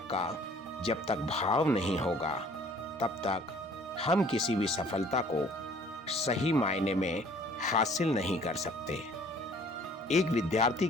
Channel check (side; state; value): both; normal; correlation 0.55